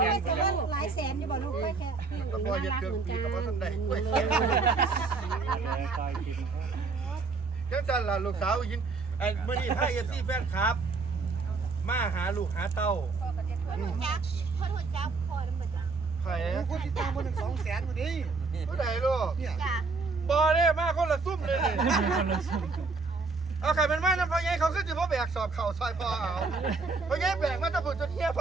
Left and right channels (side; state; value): left; quieter; 4.1 dB